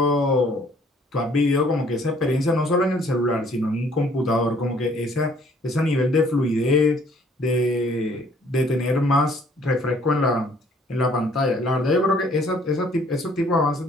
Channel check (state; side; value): normal; both; correlation 0.60